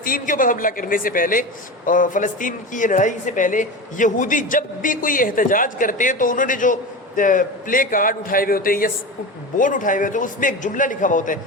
کے اوپر حملہ کرنے سے پہلے، فلسطین کی یہ لڑائی سے پہلے، یہودی جب بھی کوئی احتجاج کرتے ہیں تو انہوں نے جو پلے کارڈ اٹھائے ہوئے ہوتے ہیں یا بورڈ اٹھائے ہوئے ہوتے ہیں، اس میں ایک جملہ لکھا ہوا ہوتا ہے،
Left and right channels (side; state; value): both; normal; correlation 0.26